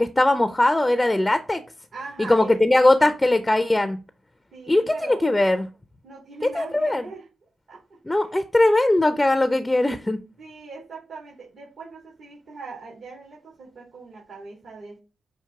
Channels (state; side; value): normal; both; correlation 0.98